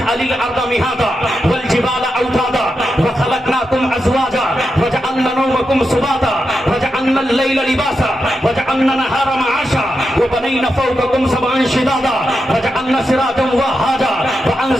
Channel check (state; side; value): normal; both; correlation 0.87